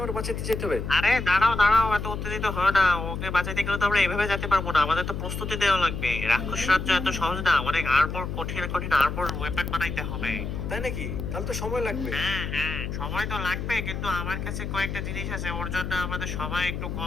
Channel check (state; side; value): noise; left; hum, 5 dB below the sound